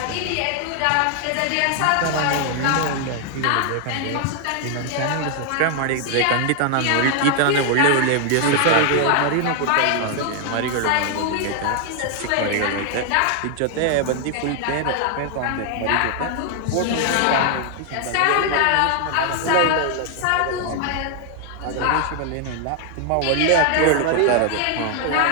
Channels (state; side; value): different; both; correlation 0.00